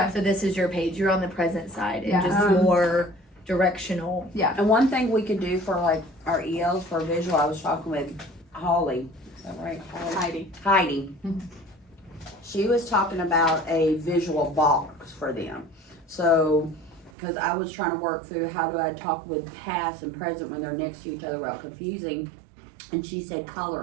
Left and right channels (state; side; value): drops out; left; at 17.1 s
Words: So this is your page, you're on the present side, and Yeah. just more directional. And one thing we could do for like our ELs for visual, I was talking with Holly, is that right? Heidi. She was talking about a visual box for them. So, because I was trying to work through how do I talk with past and present when they're next to each other without confusing. And she said